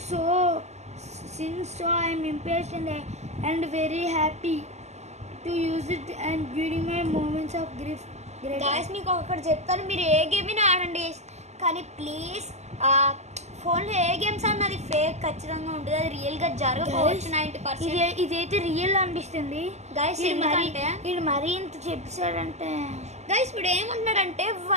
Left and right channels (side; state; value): left; late; 0.33 ms